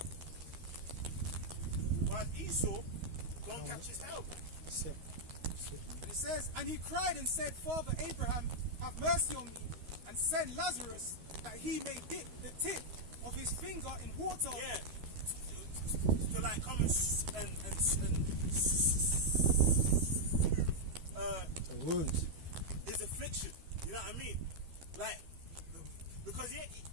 While Esau don't catch his hell, man. That's it. And it says, and he cried and said, Father Abraham, have mercy on me, and send Lazarus that he may dip the tip of his finger in water. Yeah. To like come and The wounds. his affliction. You know what I mean? Like, because he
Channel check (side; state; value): left; late; 13 ms